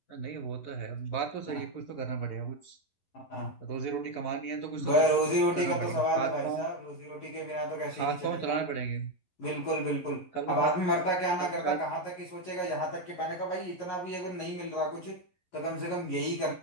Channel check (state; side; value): late; right; 11 ms